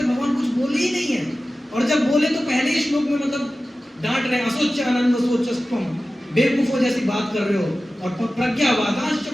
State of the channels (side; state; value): both; normal; correlation 0.95